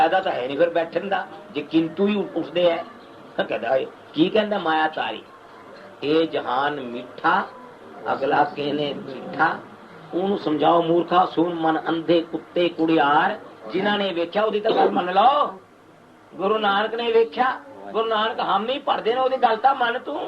तो है नहीं फिर बैठन का जे किंतु ही उठते है कहता की कहता माया तारी ये जहान मीठा अगला कहने मीठा ओनू समझाओ मूर्खा सुन मन अंधे कुत्ते कुड़ियार जिन्होंने वेख्या ओदी तो गल मन लो। गुरु नानक ने वेख्या गुरु नानक हम नहीं पढ़ते ना ओदी गल तां मन तू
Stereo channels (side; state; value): both; identical; correlation 1.00